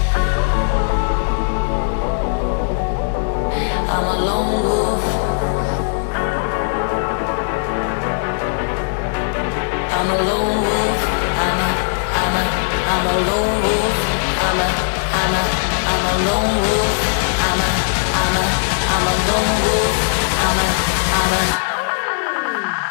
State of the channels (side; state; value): right; silent; digital silence